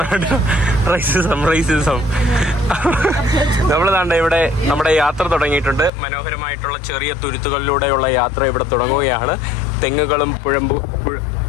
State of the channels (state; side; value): drops out; right; at 5.9 s